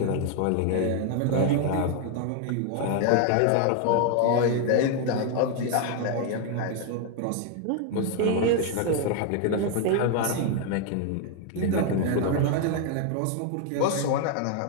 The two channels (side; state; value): both; different; correlation 0.01